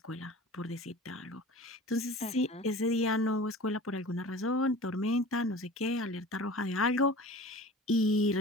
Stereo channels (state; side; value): normal; both; correlation 0.40